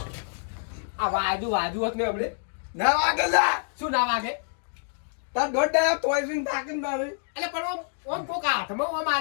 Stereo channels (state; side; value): silent; right; digital silence